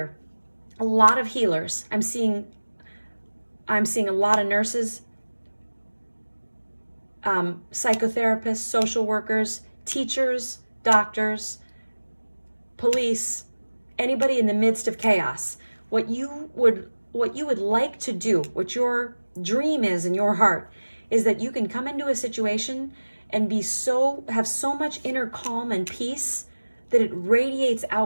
A lot of healers. I'm seeing a lot of nurses, psychotherapists, social workers, teachers, doctors, police, anybody in the midst of chaos. What you would like to do, what your dream is in your heart, is that you can come into a situation and have so much inner calm and peace that it radiates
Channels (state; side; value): inverted; both; correlation -1.00